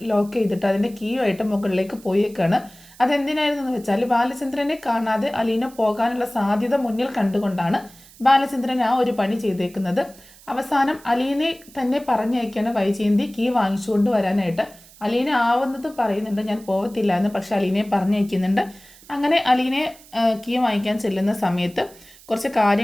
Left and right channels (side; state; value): right; noise; hiss, 23 dB below the sound